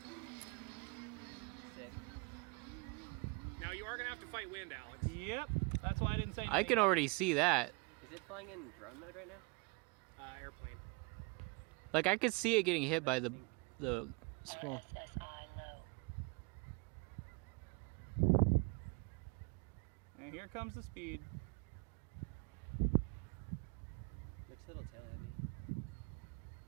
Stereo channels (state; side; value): quieter; left; 29.1 dB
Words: Sick. Now you are gonna have to fight wind, Alex. Yep. That's why I didn't say anything. I can already see that. Is it flying in drone mode right now? Airplane. Like I could see it getting hit by the small. And here comes the speed. Looks a little tail heavy.